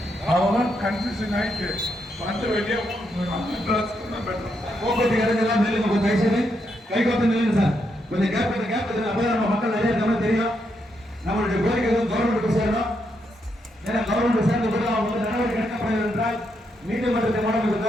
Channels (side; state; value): both; normal; correlation 0.80